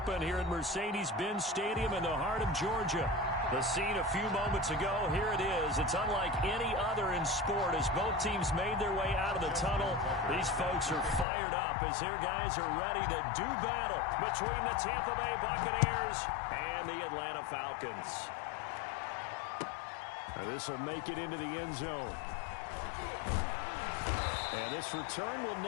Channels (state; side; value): drops out; right; at 11.2 s